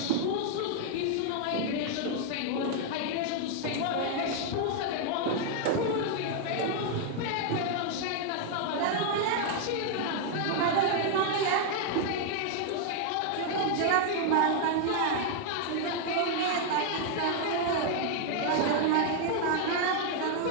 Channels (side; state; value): both; different; correlation 0.00